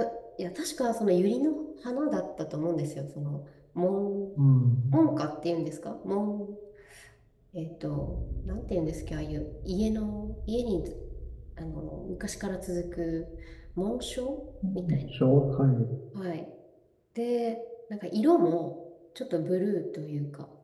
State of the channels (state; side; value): identical; both; correlation 1.00